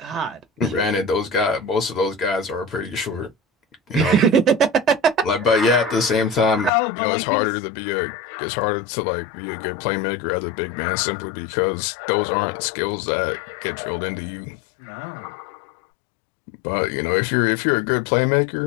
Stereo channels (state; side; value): drops out; right; at 6.7 s